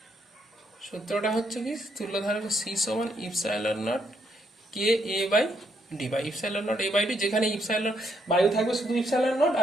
সূত্রটা হচ্ছে কি তুল্যধারক C সমান ইপসাইলন নট K/A/D বা ইপসাইলন নট A/D, যেখানে ইপসাইলন বায়ু থাকবে শুধু ইপসাইলন নট,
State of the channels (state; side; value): normal; both; correlation 0.74